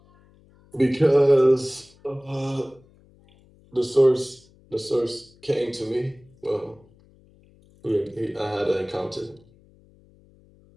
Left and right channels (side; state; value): left; noise; hum, 29 dB below the sound